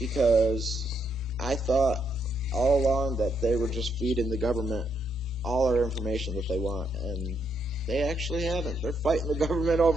I thought all along that they were just feeding the government all our information that they want, and they actually haven't. They're fighting the government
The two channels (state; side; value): normal; both; correlation 0.76